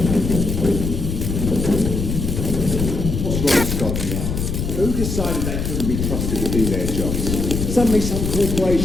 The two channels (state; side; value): noise; left; rumble, 2 dB below the sound